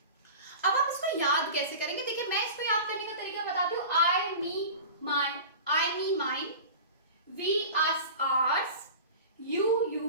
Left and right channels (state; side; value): inverted; both; correlation -0.36